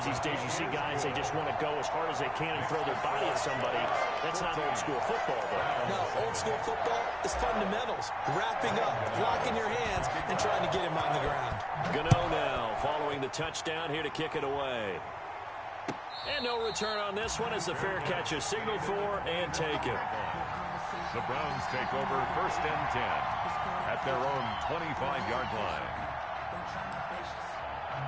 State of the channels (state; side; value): identical; both; correlation 1.00